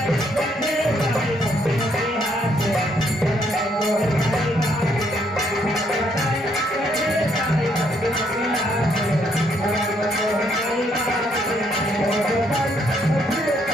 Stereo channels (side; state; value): both; normal; correlation 0.71